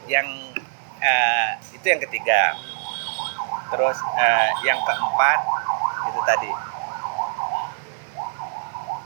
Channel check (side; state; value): left; silent; digital silence